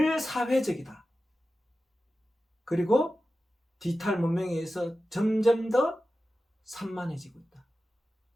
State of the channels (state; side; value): normal; both; correlation 0.94